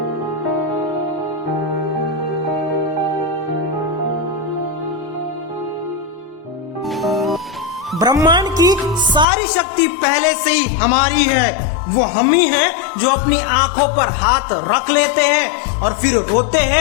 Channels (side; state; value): right; drops out; at 9.2 s